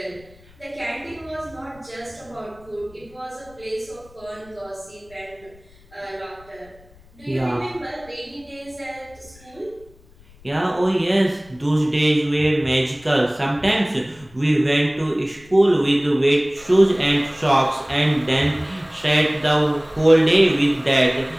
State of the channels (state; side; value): noise; left; rumble, 26 dB below the sound